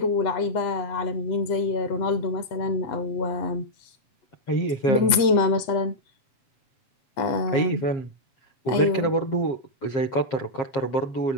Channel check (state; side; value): late; right; 7.9 ms